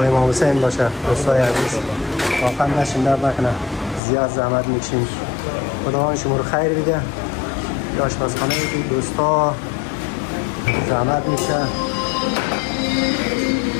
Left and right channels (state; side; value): drops out; right; at 4.0 s